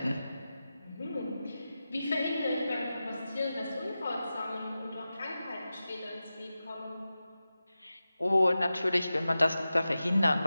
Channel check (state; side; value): inverted; both; correlation -0.94